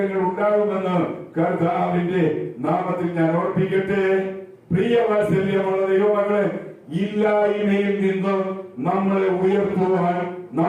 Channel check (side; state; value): both; identical; correlation 1.00